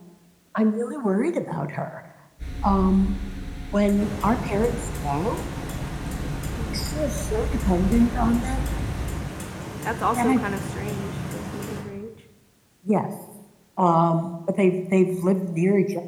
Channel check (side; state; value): both; identical; correlation 1.00